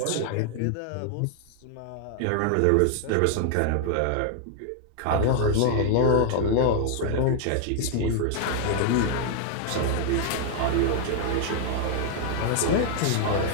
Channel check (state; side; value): different; both; correlation 0.00